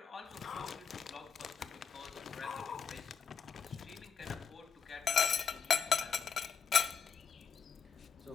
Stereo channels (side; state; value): right; quieter; 6.5 dB